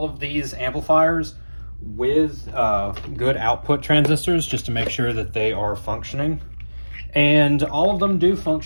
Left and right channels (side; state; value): both; inverted; correlation -1.00